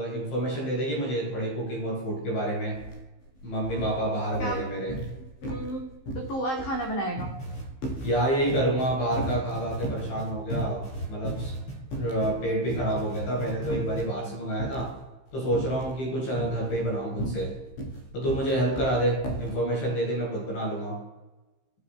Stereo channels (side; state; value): right; late; 15 ms